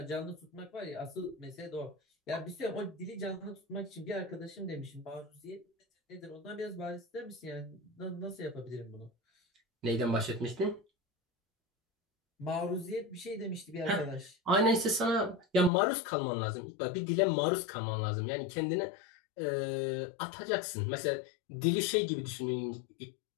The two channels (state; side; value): drops out; right; at 15.7 s